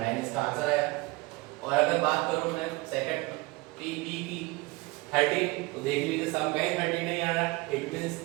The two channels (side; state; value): left; quieter; 23.4 dB